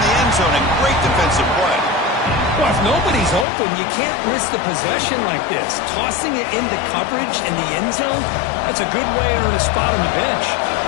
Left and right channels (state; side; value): drops out; right; at 3.5 s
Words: end zone. A great defensive play. Well, if nobody's open, you can't risk the possession like this. Tossing it into coverage in the end zone, that's a good way to earn a spot on the bench.